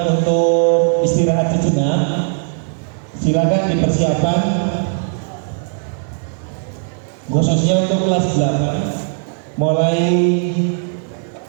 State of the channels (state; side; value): silent; left; 64 dB below the other